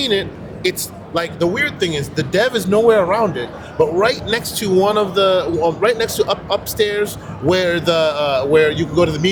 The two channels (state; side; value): identical; both; correlation 1.00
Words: it, it's like, the weird thing is the dev is nowhere around it, but right next to upstairs where where you can go to the